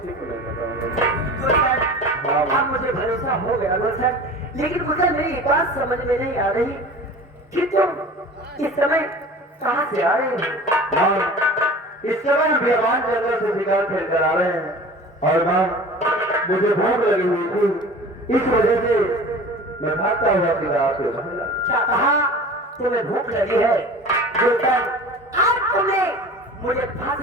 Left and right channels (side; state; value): both; normal; correlation 0.39